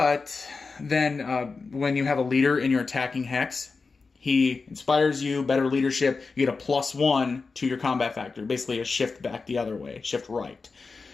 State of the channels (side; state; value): right; quieter; 4.4 dB